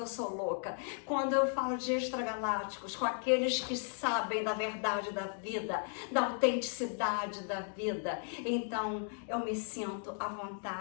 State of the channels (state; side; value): silent; right; 54 dB below the other